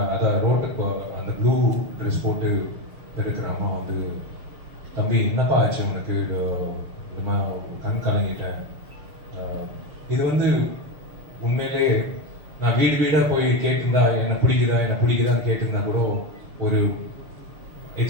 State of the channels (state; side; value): late; left; 6.9 ms